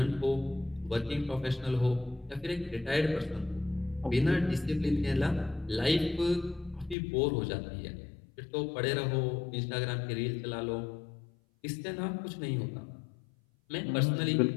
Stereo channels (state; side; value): drops out; right; at 7.0 s